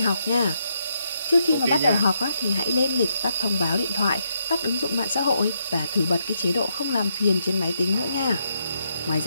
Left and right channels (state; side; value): inverted; both; correlation -0.78